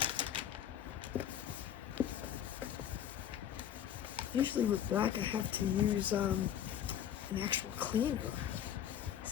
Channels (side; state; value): right; quieter; 10.1 dB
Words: Usually with black I have to use an actual cleaner.